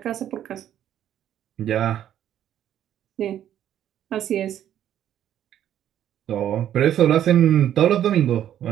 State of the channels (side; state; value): left; quieter; 10.9 dB